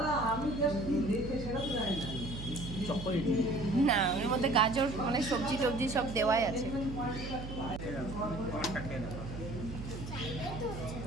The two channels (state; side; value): noise; right; hum, 9 dB below the sound